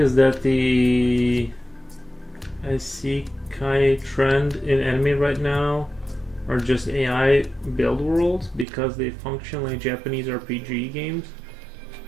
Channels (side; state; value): left; drops out; at 8.7 s